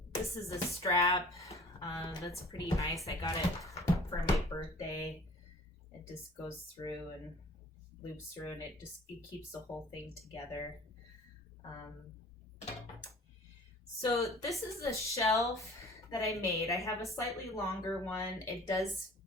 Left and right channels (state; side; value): normal; both; correlation 0.48